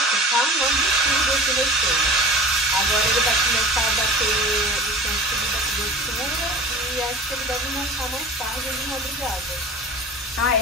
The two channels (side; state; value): both; normal; correlation 0.38